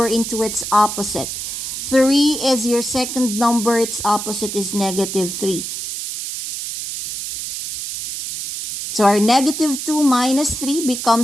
into its opposite. 3 is your second number, its opposite is negative 3. So our negative 2 minus 3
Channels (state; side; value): noise; right; hiss, 6 dB below the sound